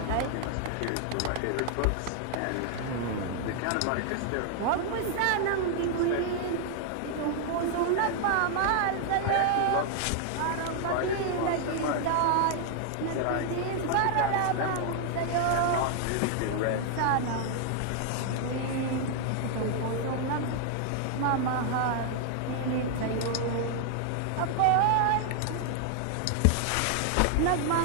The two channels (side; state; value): both; different; correlation 0.00